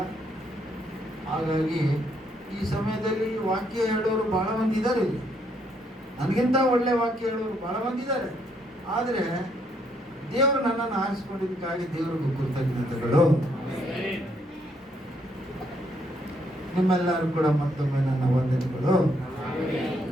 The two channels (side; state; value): both; normal; correlation 0.72